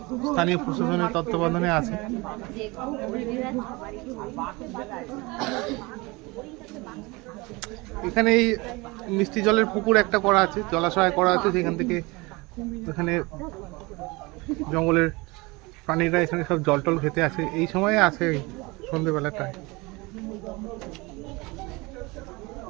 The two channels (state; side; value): quieter; left; 24.5 dB